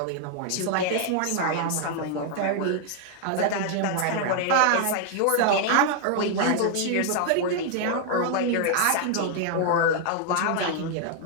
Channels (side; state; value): both; different; correlation 0.00